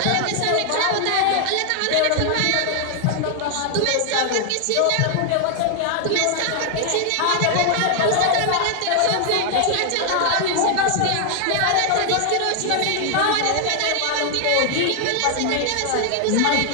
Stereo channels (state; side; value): different; both; correlation 0.00